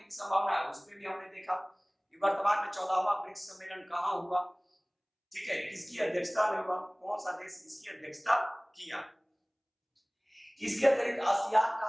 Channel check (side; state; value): both; identical; correlation 1.00